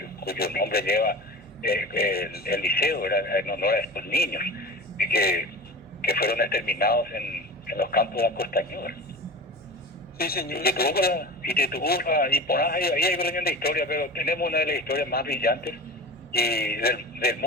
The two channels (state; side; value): normal; both; correlation 0.33